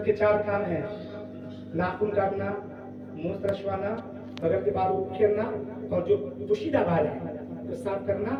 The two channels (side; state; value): both; identical; correlation 1.00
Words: کے 4 کام ہیں، ناخن کاٹنا، منہ ترشوانا، بغل کے بال اکھیرنا، اور جو پوشیدہ بال ہے تو صاف کرنا،